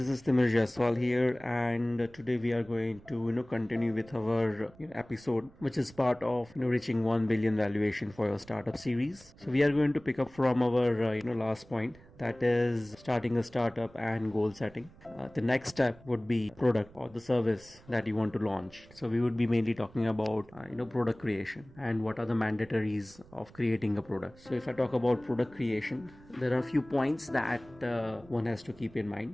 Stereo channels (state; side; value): noise; right; rumble, 24 dB below the sound